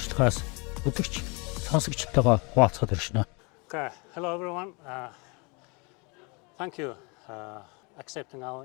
үзэгч сонсогчтойгоо хуваалцахад иршнэ. Okay, hello everyone. Thank you accepting our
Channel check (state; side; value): quieter; right; 30.2 dB